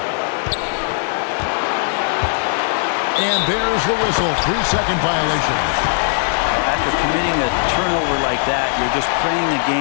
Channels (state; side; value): silent; right; digital silence